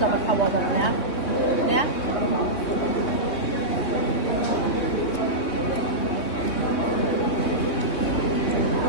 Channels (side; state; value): right; late; 3.1 ms